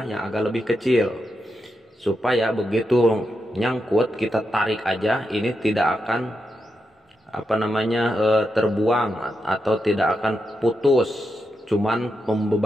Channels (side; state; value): both; normal; correlation 0.86